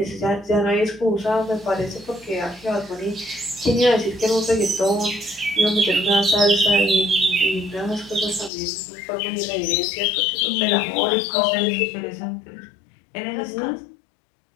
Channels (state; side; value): drops out; right; at 8.5 s